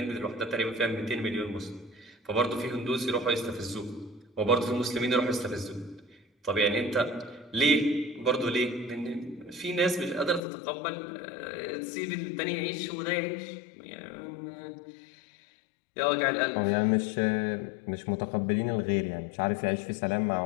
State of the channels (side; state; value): right; drops out; at 10.4 s